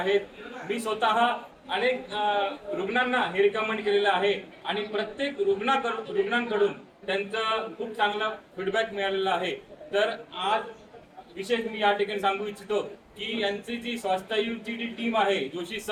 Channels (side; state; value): both; identical; correlation 1.00